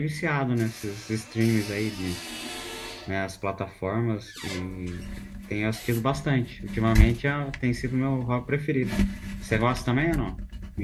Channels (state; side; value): identical; both; correlation 1.00